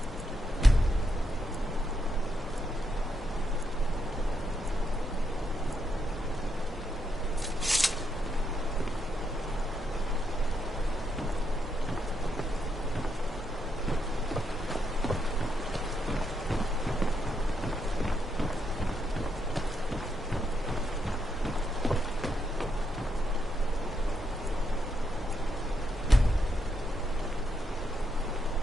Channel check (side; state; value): both; normal; correlation 0.80